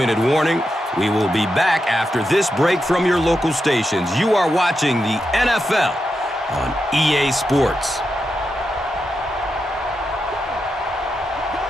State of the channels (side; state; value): both; normal; correlation 0.87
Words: warning. We will be back after this break from your local stations. You are watching the NFL on EA Sports.